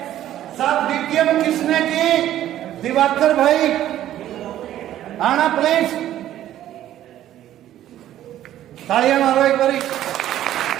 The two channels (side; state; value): left; quieter; 12.5 dB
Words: सब डीटीएम किसने की? दिवाकर भाई आना प्लीज, तालियां मारो एक बारी।